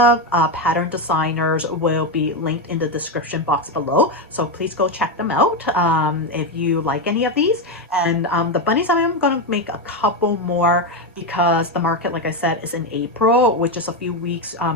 pattern designers will be linked in the description box below, so please go check them out if you like any of these. And the bunnies, I'm gonna make a couple more because the market, like I said, is in April, which is a few weeks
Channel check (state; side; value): normal; both; correlation 0.10